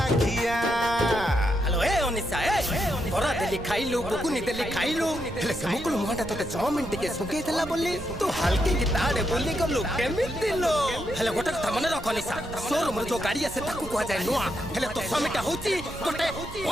हेलो ए ओनिसा ए बरा देली खाइलु बुकुनी देली खाइलु हेले से मुकुल मुहाटा तोते 6 मिनिट के सुके देला बोली तू हल्के की ताड़े बोली गलु केमिति लो हेले गोटे कथा मने रख ओनिसा शोरूम रे जो गाड़ी आसे ताकू को जाय नुआ हेले तो समिटा होची गोटे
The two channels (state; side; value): noise; right; rumble, 13 dB below the sound